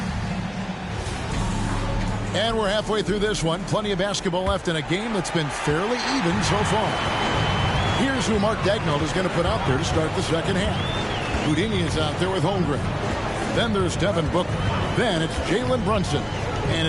And we're halfway through this one. Plenty of basketball left in a game that's been fairly even so far. Here's who Mark Daigneault is going to put out there to start the second half. Houdini is out there with Holmgren. Then there's Devin Booker. Then it's Jalen Brunson. And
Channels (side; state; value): both; identical; correlation 1.00